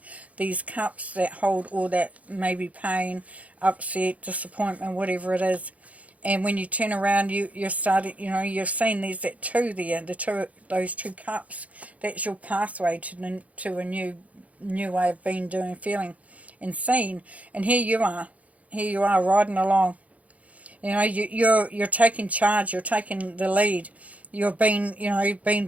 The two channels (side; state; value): left; late; 0.068 ms